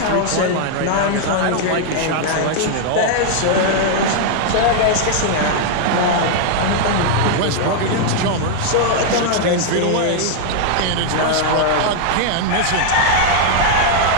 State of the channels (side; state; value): both; different; correlation 0.00